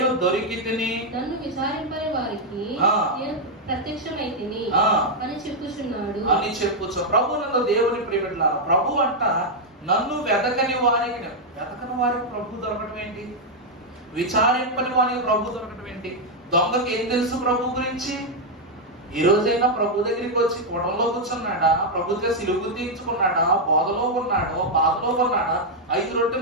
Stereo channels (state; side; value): normal; both; correlation -0.01